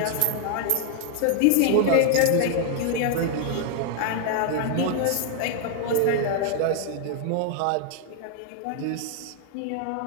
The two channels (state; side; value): different; both; correlation 0.00